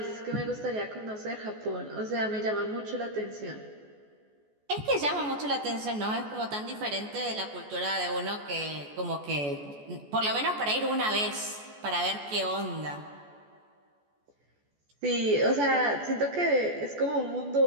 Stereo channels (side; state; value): left; late; 14 ms